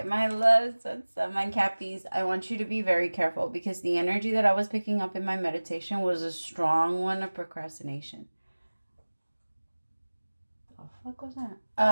my loves, what's up, my Cappies? I want you to be very careful because the energy that I was picking up in my meditation was a strong one of procrastination. What was that?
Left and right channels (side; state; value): both; inverted; correlation -1.00